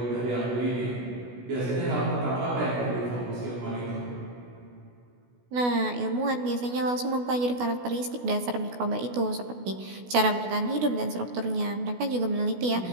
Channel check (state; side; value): late; left; 16 ms